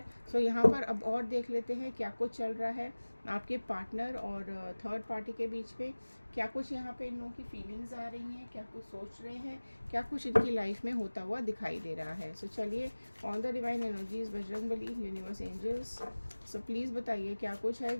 सो यहाँ पर अब और देख लेते हैं क्या कुछ चल रहा है आपके पार्टनर और थर्ड पार्टी के बीच में, क्या कुछ यहाँ पे इन लोगों की फीलिंग्स आ रही हैं, क्या कुछ सोच रहे हैं, क्या कुछ इनकी लाइफ में होता हुआ दिखाई दे रहा है। सो चलिए, on the divine energies, Bajrangbali, universe, angels, so please बताइए क्या कुछ है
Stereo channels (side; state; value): both; inverted; correlation -1.00